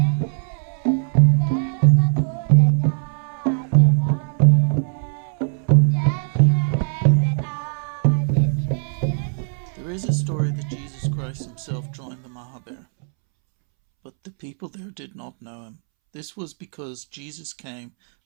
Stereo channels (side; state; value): left; silent; 65 dB below the other